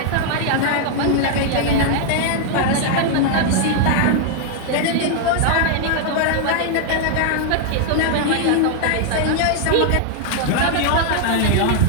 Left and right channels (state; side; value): different; both; correlation 0.00